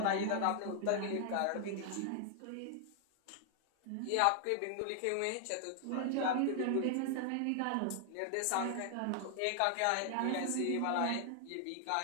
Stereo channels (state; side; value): different; both; correlation 0.00